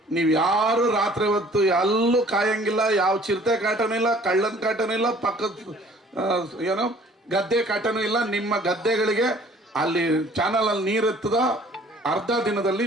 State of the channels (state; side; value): normal; both; correlation 0.54